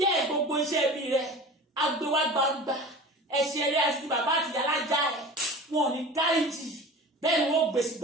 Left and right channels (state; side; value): normal; both; correlation 0.36